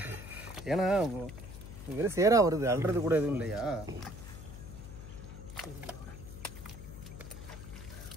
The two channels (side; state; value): left; noise; hum, 12 dB below the sound